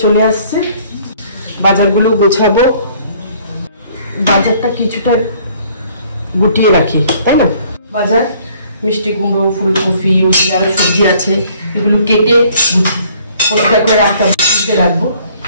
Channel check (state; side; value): inverted; both; correlation -0.59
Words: চলে আসছে, বাজারগুলো গোছাবো। বাজারটা কিছুটা গুটিয়ে রাখি, তাই না? বাজার মিষ্টি কুমড়ো, ফুলকপি, আরো সবজি আছে, এগুলো কেটে পরিষ্কার করে রাখতে হবে, ফ্রিজে রাখবো।